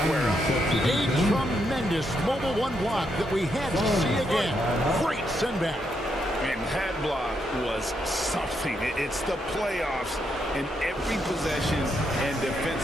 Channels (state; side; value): normal; both; correlation 0.79